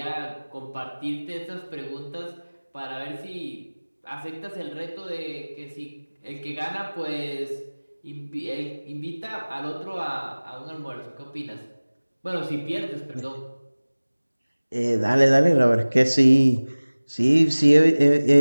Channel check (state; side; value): inverted; both; correlation -1.00